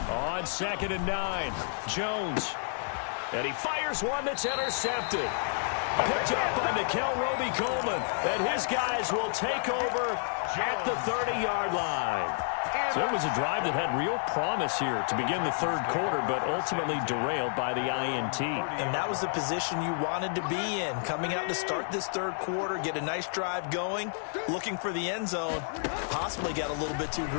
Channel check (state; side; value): silent; right; 57 dB below the other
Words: On 2nd and 9, Jones. And he fires one that's intercepted. Picked up by Nickel Roby-Coleman. And his guys will take over at the 30-yard line. So it was a drive that had real promise here to begin the third quarter, but ultimately derailed by the INT. And that was the position you wanted to be in. Coming out to start this third quarter, get a nice drive going, looking for the end zone. Possibly got a little bit too